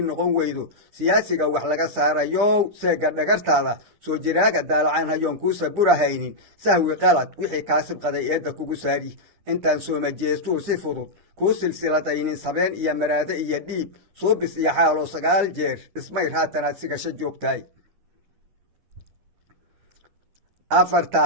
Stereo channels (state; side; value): late; left; 10 ms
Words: weydo siyaasiga wax laga saarayow seega dhagartaada soo jiraaga daalacaan hayoon kuu saburahaynin sahwi qalad wixii kaa sibqaday eedda kugu saari intaan soomajeestuu si fudud kuu silsiladaynin sabeen iyo maraade iyo dhiib suubis iyo xaaloo 9 jeer ismayr haatanaad sigasho joogtahay